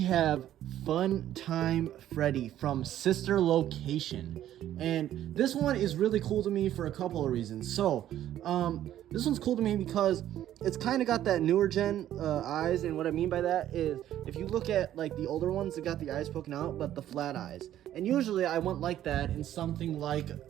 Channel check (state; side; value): quieter; left; 12.1 dB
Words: Fun Time Freddy from Sister Location, and this one is really cool to me for a couple of reasons. So this one's cool to me because it's kind of got that newer gen eyes, and what I mean by that is if you look at like the older ones, they got the eyes poking out but the flat eyes, and usually I want like that in something like